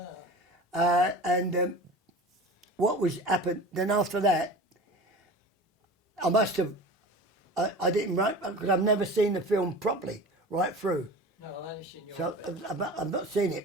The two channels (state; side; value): normal; both; correlation 0.36